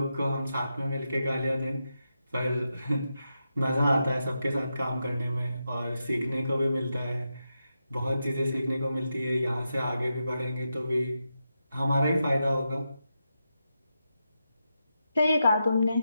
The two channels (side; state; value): both; inverted; correlation -0.87